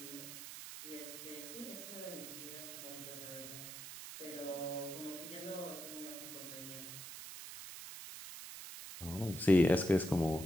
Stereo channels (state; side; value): noise; right; hiss, 10 dB below the sound